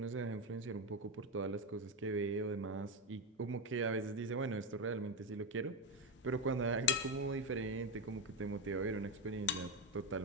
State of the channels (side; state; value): both; normal; correlation 0.10